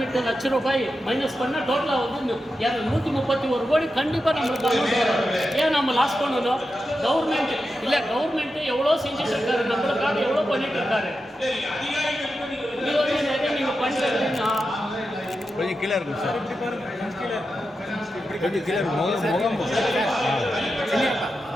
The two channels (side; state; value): both; normal; correlation 0.89